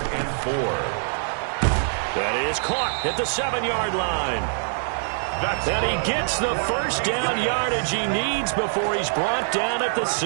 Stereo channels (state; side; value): silent; left; digital silence